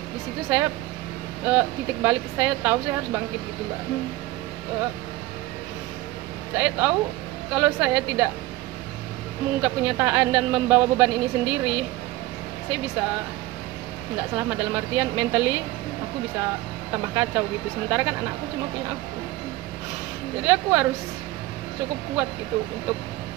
Di situ saya titik balik saya tahu saya harus bangkit gitu mbak. Saya tahu kalau saya tidak mengungkap kenyataan dan membawa beban ini sendiri, saya bisa nggak selamat, dalam artian mentally aku bisa tambah kacau gitu. Sementara kan anakku cuma punya aku, jadi aku harus cukup kuat gitu untuk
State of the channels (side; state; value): left; quieter; 17.6 dB